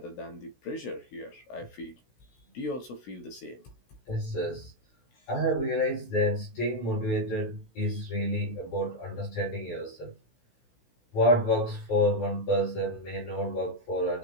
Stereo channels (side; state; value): right; late; 16 ms